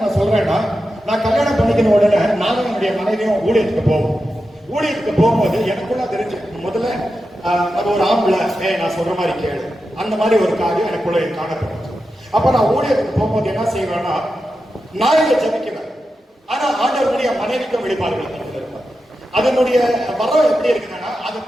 நான் சொல்றேன்னா, நான் கல்யாணம் பண்ணிக்கிற உடனே நானும் என்னுடைய மனைவியும் ஊழியத்துக்கு போவோம். ஊழியத்துக்கு போகும்போது எனக்குள்ள தெரிஞ்சு முதல்ல அது ஒரு ஆம்பளை நான் சொல்ற மாதிரி கேளு, அந்த மாதிரி ஒரு காரியம் எனக்குள்ள காணப்படும். அப்ப நான் ஊழியத்துக்கு போகும்போது என்ன செய்வேன்னா, நான் இங்க ஜபிக்குவேன். ஆனா ஆண்டவருடைய மனைவிக்கும் வெளிப்பாடுகள் அதனுடைய வரம் எப்படி இருக்குன்னா, அது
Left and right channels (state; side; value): normal; both; correlation 0.90